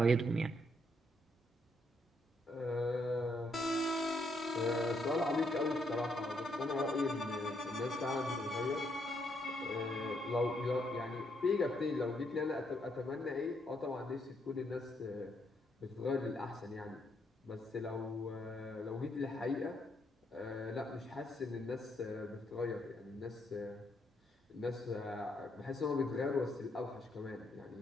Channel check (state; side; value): normal; both; correlation 0.75